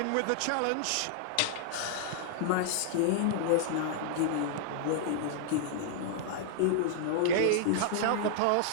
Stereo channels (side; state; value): both; different; correlation -0.01